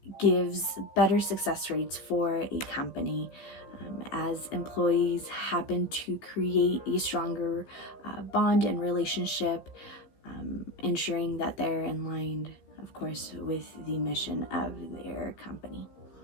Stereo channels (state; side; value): late; right; 15 ms